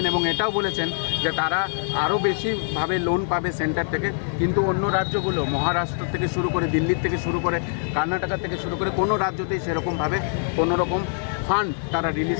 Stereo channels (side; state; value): right; silent; digital silence